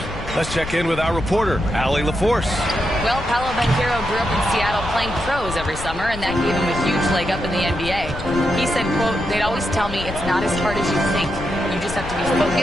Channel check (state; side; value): noise; left; rumble, 10 dB below the sound